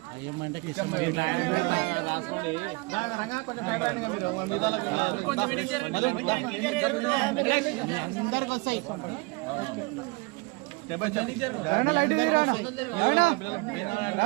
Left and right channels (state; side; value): quieter; left; 26.7 dB